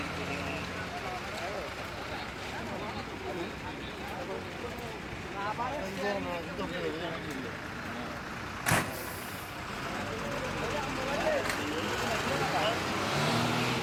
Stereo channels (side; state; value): both; identical; correlation 1.00